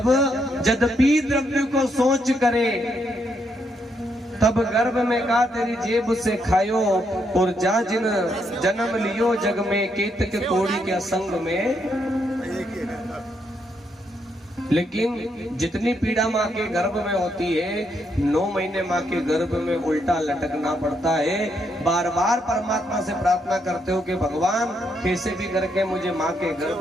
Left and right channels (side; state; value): both; normal; correlation 0.77